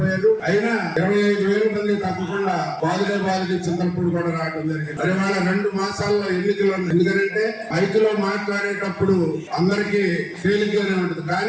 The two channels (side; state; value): both; identical; correlation 1.00